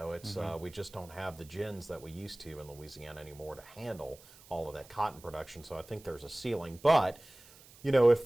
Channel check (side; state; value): right; noise; hiss, 23 dB below the sound